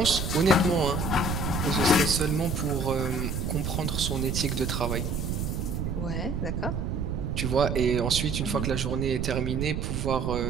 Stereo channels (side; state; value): right; noise; rumble, 2 dB below the sound